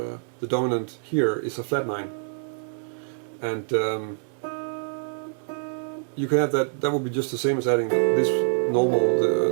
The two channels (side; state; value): left; silent; digital silence